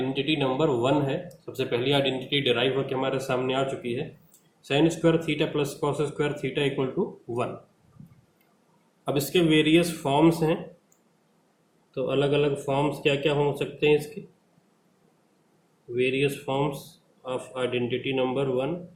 नंबर 1 है। सबसे पहली आइडेंटिटी डिराइव होकर हमारे सामने आ चुकी है, sine square theta plus cos square theta equal to 1। अब इसके वेरियस फॉर्म्स हैं, तो अलग अलग फॉर्म्स क्या क्या हो सकते हैं इसके? Various forms of identity number 1,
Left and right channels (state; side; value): identical; both; correlation 1.00